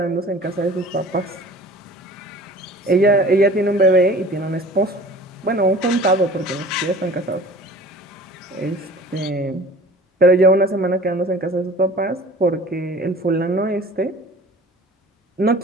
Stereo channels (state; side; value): normal; both; correlation 0.44